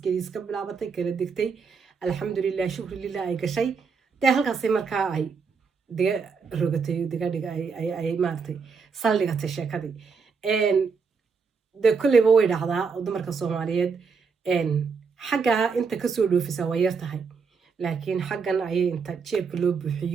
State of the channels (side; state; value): left; quieter; 5.4 dB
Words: iska bilaabatay kala degtay alxamdulilah shukri lilah ay gashay dee halkaasay markaa ay diga rogatay digadhiga ay maaragtay saldhigatay sheekadii dee kolleyba way dhacdaa oo dumarka soomaaliyeed xaggaa inta kasoo dhoofisa waa yar tahay laakiin xaggan ayay inta jeebka loo